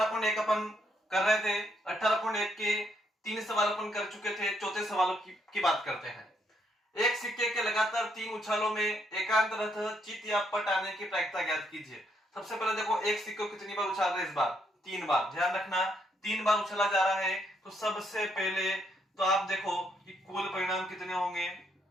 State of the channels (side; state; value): both; normal; correlation 0.74